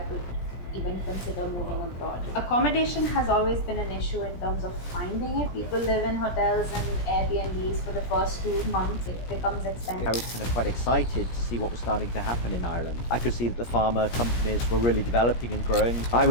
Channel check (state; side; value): late; right; 17 ms